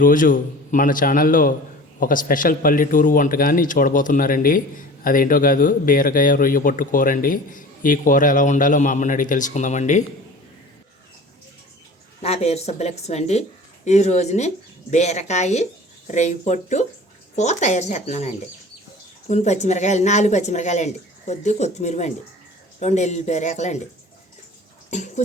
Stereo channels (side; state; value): both; normal; correlation 0.41